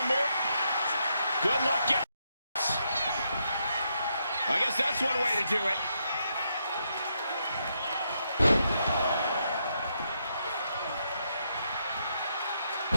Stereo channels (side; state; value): both; inverted; correlation -0.79